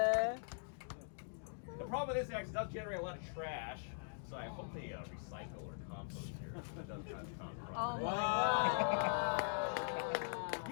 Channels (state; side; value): silent; right; digital silence